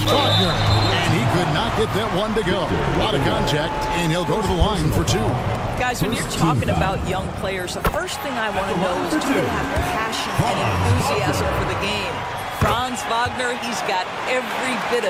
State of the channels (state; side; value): identical; both; correlation 1.00